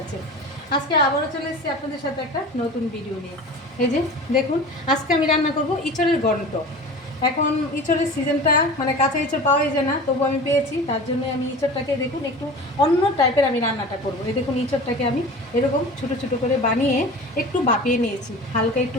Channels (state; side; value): normal; both; correlation 0.36